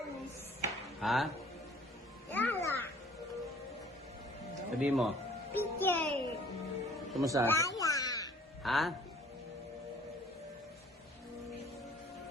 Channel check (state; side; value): normal; both; correlation 0.53